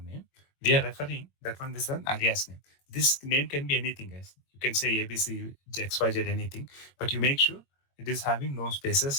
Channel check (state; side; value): late; right; 22 ms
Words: name. We are referring that one is an alias name. This name can be anything, guys. You can say ABC, XYZ, anything, but you make sure it is having no